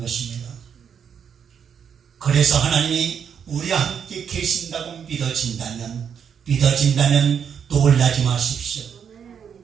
것입니다. 그래서 하나님이 우리와 함께 계신다고 믿어진다면 놀라지 마십시오.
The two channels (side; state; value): left; quieter; 7.6 dB